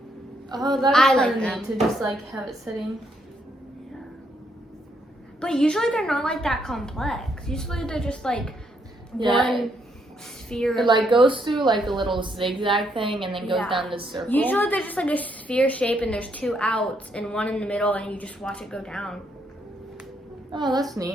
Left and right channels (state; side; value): normal; both; correlation 0.74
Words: Oh, that's I kind like of them. neat to just like have it sitting. But usually they're not like that complex. Usually they're just like Yeah. one sphere. It like goes through like a little zigzag thing and then goes Yeah. down this circle. Usually they're just like a sphere shape and there's 2 outs and one in the middle and you just watch it go down. Oh, that's